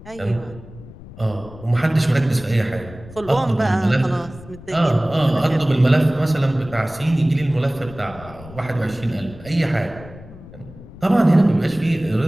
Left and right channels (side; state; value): left; noise; rumble, 17 dB below the sound